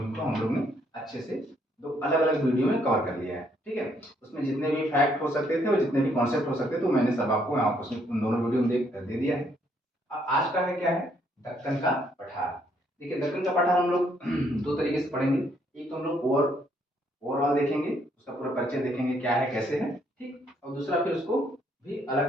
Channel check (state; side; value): normal; both; correlation 0.70